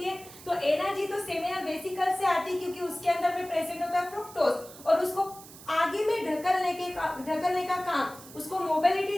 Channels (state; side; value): noise; right; hiss, 18 dB below the sound